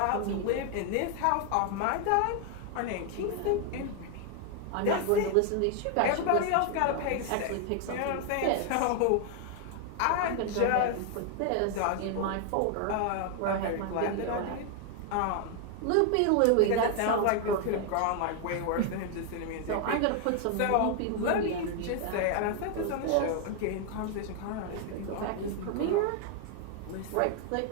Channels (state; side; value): different; both; correlation 0.00